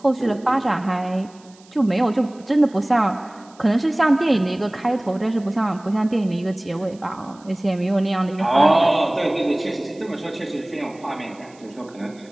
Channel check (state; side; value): noise; right; hiss, 28 dB below the sound